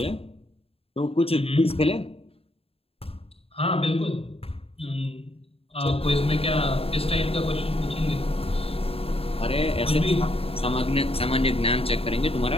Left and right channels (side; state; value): right; late; 0.28 ms